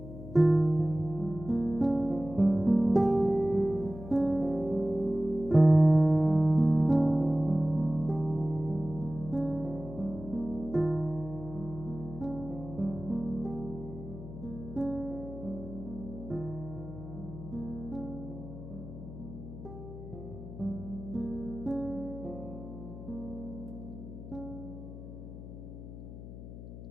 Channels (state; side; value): noise; left; hum, 12 dB below the sound